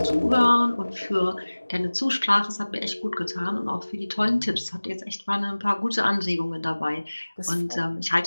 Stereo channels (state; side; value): inverted; both; correlation -1.00